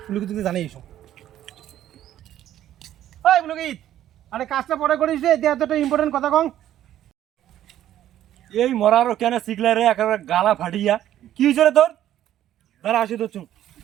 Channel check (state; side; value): quieter; left; 12.1 dB